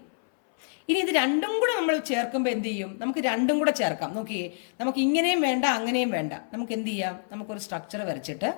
ഇനി ഇത് രണ്ടും കൂടെ നമ്മൾ ചേർക്കുമ്പോൾ എന്ത് ചെയ്യും? നമുക്ക് രണ്ടും കൂടെ ചേർക്കാം. നോക്കിയേ, നമുക്ക് ഇങ്ങനെയും വേണ്ട അങ്ങനെയും വേണ്ട. നമുക്ക് എന്ത് ചെയ്യാം? നമുക്കൊരു സ്ട്രക്ചർ വരച്ചിട്ട്,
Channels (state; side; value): silent; right; 60 dB below the other